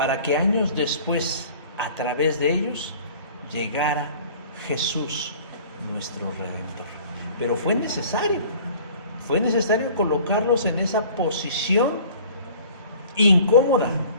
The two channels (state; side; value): inverted; both; correlation -0.48